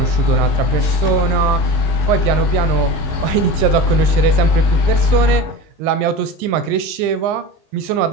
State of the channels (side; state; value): left; late; 19 ms